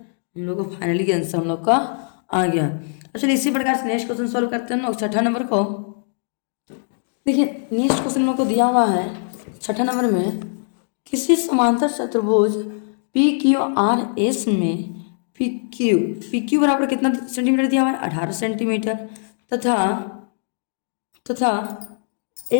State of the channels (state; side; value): silent; right; digital silence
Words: हम लोग को फाइनली आंसर हम लोग का आ गया। चलिए इसी प्रकार से नेक्स्ट क्वेश्चन सॉल्व करते हैं हम लोग, छठा नंबर को। देखिए नेक्स्ट क्वेश्चन हम लोग को दिया हुआ है छठा नंबर में, किसी समांतर चतुर्भुज PQRS में PQ बराबर कितना सेंटीमीटर दिया हुआ है, 18 सेंटीमीटर, तथा